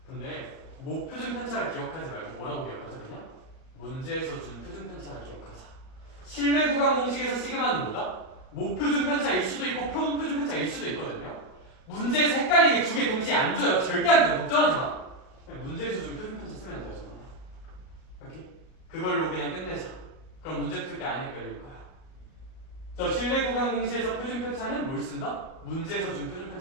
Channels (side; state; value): right; late; 38 ms